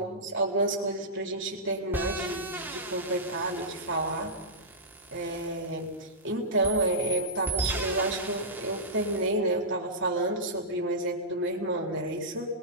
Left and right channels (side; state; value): both; normal; correlation -0.14